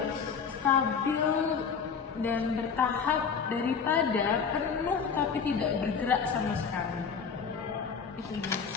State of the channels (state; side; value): quieter; right; 6.2 dB